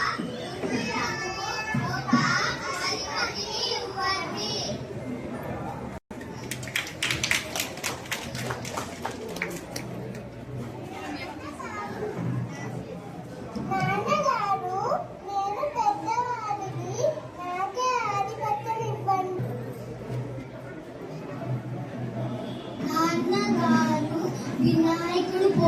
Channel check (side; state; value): both; identical; correlation 1.00